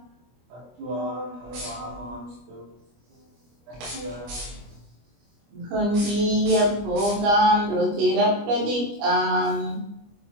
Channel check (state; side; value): late; left; 25 ms